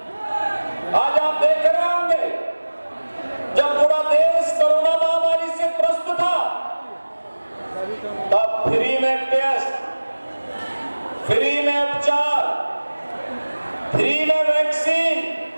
आज आप देख रहे होंगे, जब पूरा देश कोरोना महामारी से त्रस्त था, तब फ्री में टेस्ट, फ्री में उपचार, फ्री में वैक्सीन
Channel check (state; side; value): inverted; both; correlation -1.00